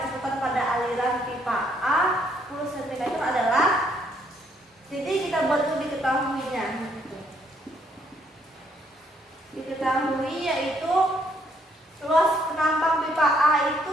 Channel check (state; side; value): normal; both; correlation 0.69